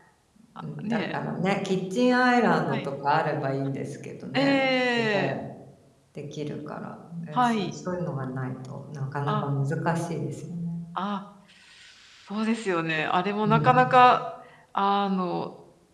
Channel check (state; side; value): identical; both; correlation 1.00